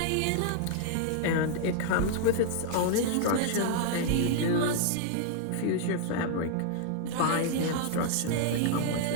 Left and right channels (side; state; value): both; different; correlation -0.01